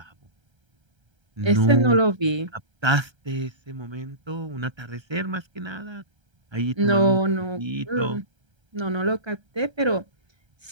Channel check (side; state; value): left; late; 1.3 ms